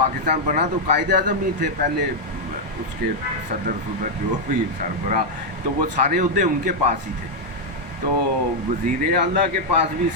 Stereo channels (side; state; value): left; late; 1.1 ms